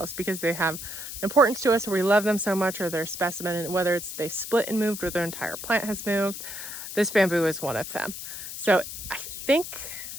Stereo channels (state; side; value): noise; left; hiss, 9 dB below the sound